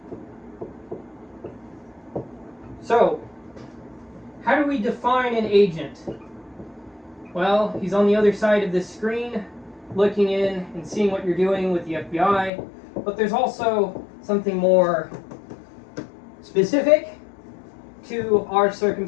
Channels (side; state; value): right; drops out; at 12.5 s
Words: So, how do we define an agent? Well, he's on the other side of this screen, looking in and seeing what you're doing with the FBI. But there's also something more specific to our